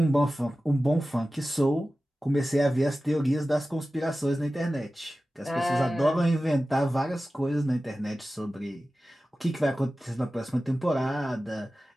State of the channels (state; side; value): normal; both; correlation 0.95